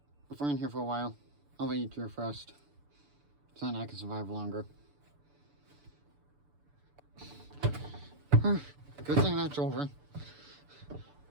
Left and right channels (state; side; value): late; left; 6.9 ms